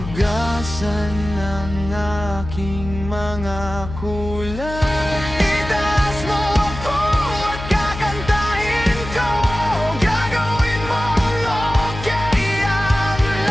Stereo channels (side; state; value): left; noise; hum, 10 dB below the sound